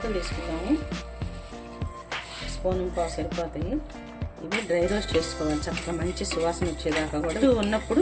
తీసుకుందాము. 1 స్పూన్ పావు సరిపోతాయి. ఇవి డ్రై రోస్ట్ చేసుకోవాలి చక్కగా మంచి సువాసన వచ్చేదాకా కూడా.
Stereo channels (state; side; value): identical; both; correlation 1.00